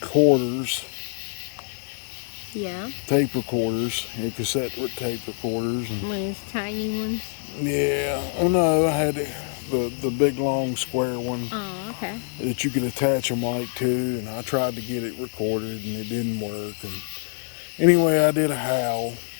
Yeah. tape recorders, the cassette tape recorders. And, One of those tiny ones. yeah. Oh no, I had the big long square one Oh, okay. that you could attach a mic to, and I tried to get it recorded and it didn't work. And anyway, I did a howl,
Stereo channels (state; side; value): silent; right; digital silence